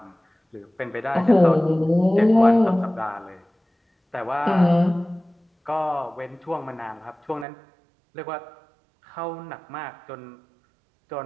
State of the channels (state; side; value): drops out; left; at 7.5 s